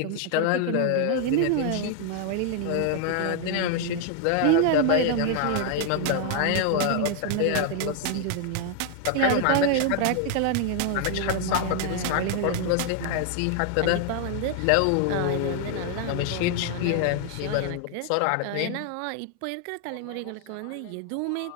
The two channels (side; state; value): both; different; correlation 0.00